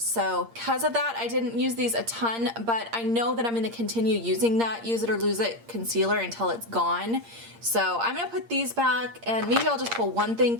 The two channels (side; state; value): left; late; 8.7 ms